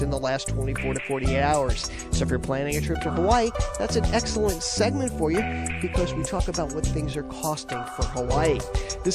in the last 24 to 48 hours. So if you're planning a trip to Hawaii, that's an excellent segment for you because we talk about what things are costing for Hawaii.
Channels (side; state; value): both; identical; correlation 1.00